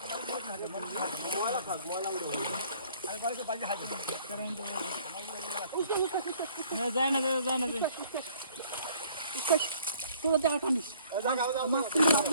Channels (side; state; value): both; inverted; correlation -0.57